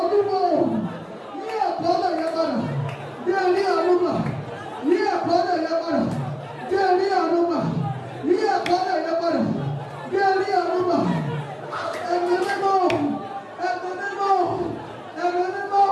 yí àkọọ́lẹ̀ yẹn padà kí ẹ rí àánú gbà yí àkọọ́lẹ̀ yẹn padà kí ẹ rí àánú gbà yí àkọọ́lẹ̀ yẹn padà kí ẹ rí àánú gbà. Ẹ̀mí mímọ́ ẹ̀mí mímọ́ ẹ̀mí mímọ́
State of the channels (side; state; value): both; identical; correlation 1.00